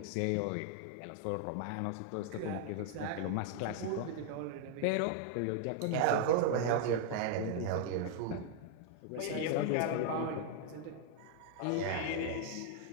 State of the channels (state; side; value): different; both; correlation 0.00